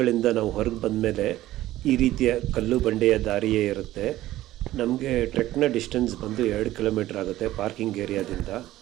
ನಾವು ಹೊರಗೆ ಬಂದಮೇಲೆ ಈ ರೀತಿಯ ಕಲ್ಲು ಬಂಡೆಯ ದಾರಿಯೇ ಇರುತ್ತೆ. ನಮಗೆ ಟ್ರೆಕ್ನ ಡಿಸ್ಟೆನ್ಸ್ ಬಂದು 2 ಕಿಲೋಮೀಟ್ರ್ ಆಗುತ್ತೆ ಪಾರ್ಕಿಂಗ್ ಏರಿಯಾದಿಂದ.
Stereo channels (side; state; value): left; quieter; 15.1 dB